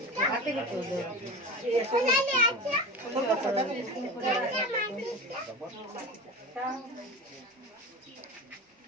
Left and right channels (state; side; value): normal; both; correlation 0.30